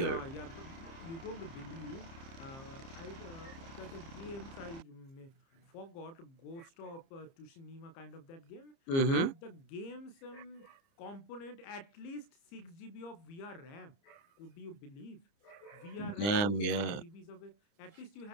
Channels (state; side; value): late; right; 30 ms